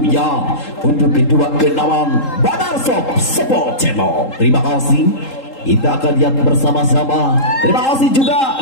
untuk kedua kenaman Badar Shop Support Channel. Terima kasih. Kita akan lihat bersama-sama. Terima kasih juga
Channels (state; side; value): late; right; 3.8 ms